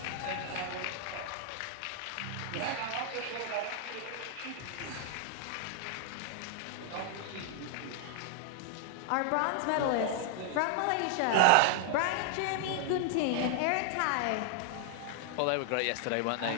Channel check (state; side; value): different; both; correlation 0.00